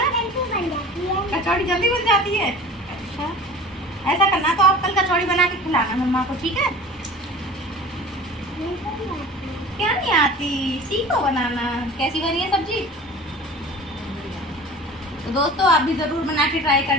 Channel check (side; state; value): both; normal; correlation 0.40